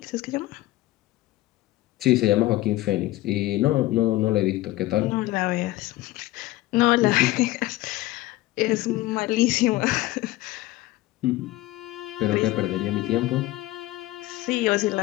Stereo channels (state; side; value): quieter; right; 17.2 dB